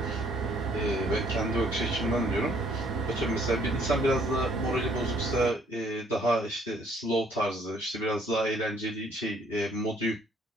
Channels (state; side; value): normal; both; correlation 0.63